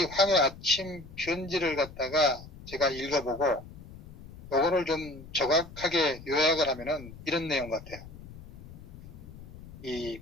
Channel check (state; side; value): noise; left; rumble, 16 dB below the sound